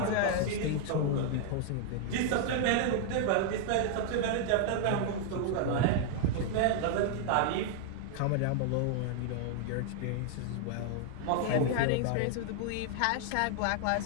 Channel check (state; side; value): different; both; correlation 0.00